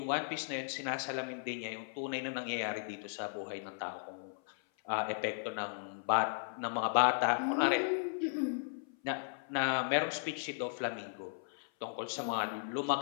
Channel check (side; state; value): right; silent; 54 dB below the other